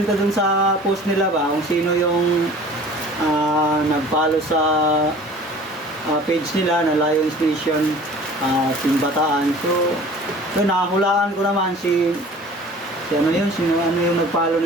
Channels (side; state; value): both; normal; correlation 0.45